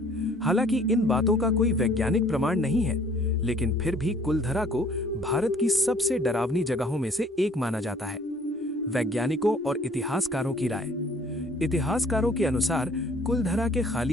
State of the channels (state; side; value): normal; both; correlation 0.57